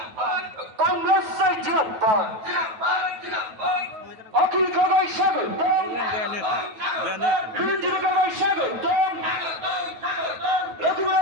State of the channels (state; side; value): late; left; 9.3 ms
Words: কংগ্রেস জিন্দাবাদ অখিল গগৈ স্বাগতম বিরোধী গগৈ স্বাগতম